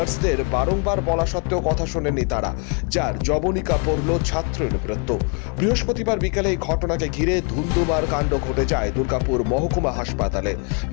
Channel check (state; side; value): quieter; right; 35.6 dB